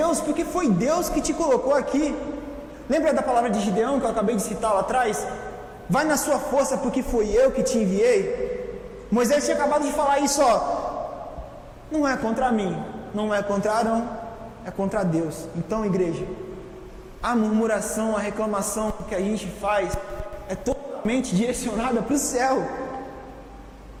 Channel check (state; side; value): identical; both; correlation 1.00